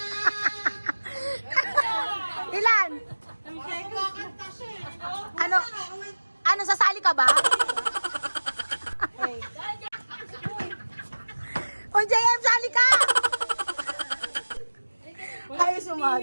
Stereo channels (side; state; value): both; inverted; correlation -1.00